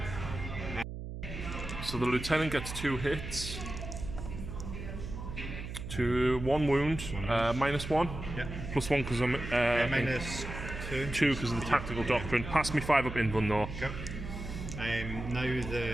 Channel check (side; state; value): right; noise; hum, 8 dB below the sound